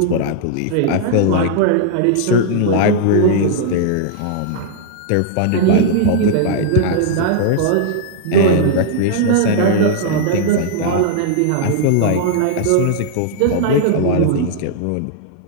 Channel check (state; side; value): different; both; correlation -0.01